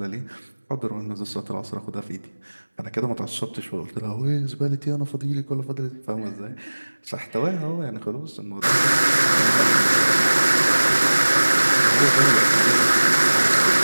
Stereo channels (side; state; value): both; inverted; correlation -1.00